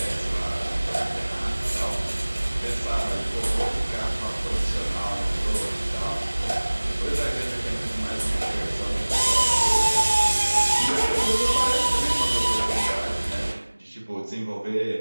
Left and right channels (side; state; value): both; inverted; correlation -1.00